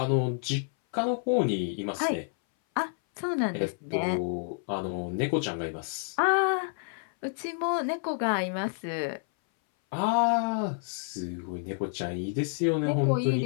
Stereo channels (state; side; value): silent; right; 58 dB below the other